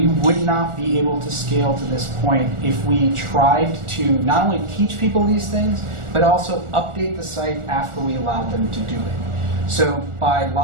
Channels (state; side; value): late; left; 1.4 ms